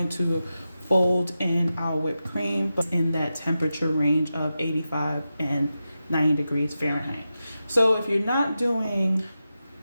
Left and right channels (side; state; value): both; inverted; correlation -0.91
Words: to fold in our whipped cream, but in that temperature range of 85 and 90 degrees Fahrenheit. So if you're not doing